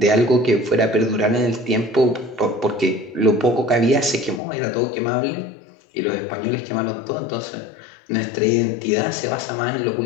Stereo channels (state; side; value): drops out; right; at 4.4 s